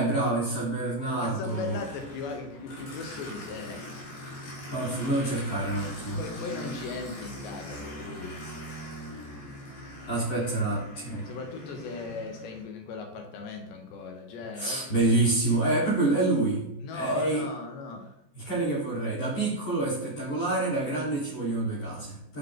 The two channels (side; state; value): right; late; 14 ms